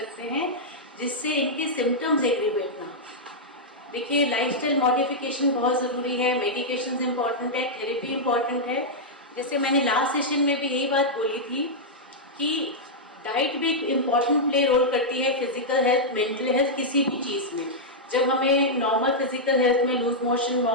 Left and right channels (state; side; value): normal; both; correlation -0.07